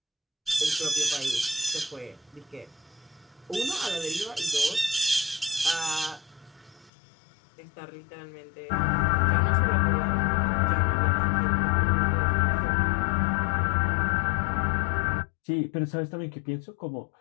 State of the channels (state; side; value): drops out; right; at 6.9 s